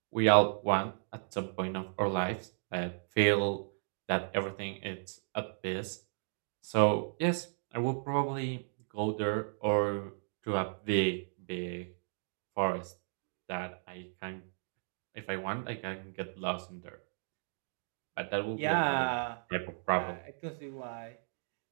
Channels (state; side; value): silent; left; digital silence